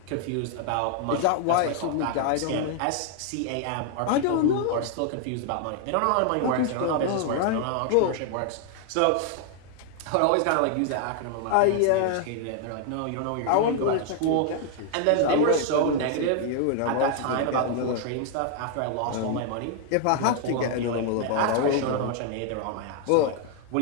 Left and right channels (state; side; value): different; both; correlation 0.00